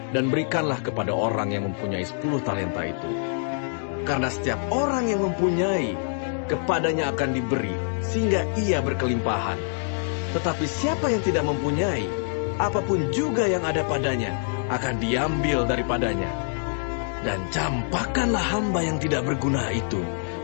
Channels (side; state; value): right; silent; digital silence